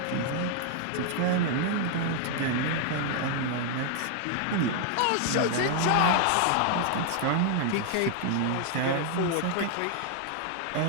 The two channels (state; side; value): different; both; correlation 0.00